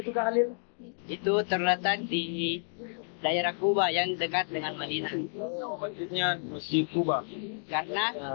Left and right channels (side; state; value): right; silent; digital silence